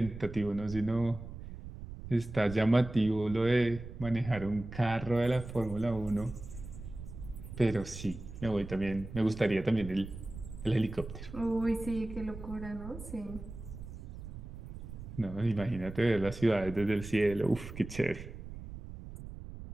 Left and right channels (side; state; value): right; noise; rumble, 11 dB below the sound